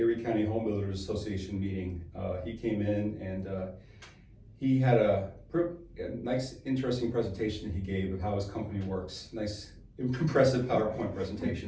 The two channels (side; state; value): both; identical; correlation 1.00